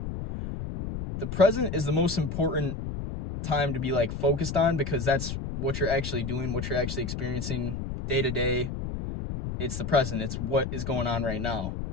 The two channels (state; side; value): noise; left; rumble, 5 dB below the sound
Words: the present is the most important time to be like focused on, because that's what you're actually doing, what you're actually experiencing day to day. It's the present. It's what is going on right now.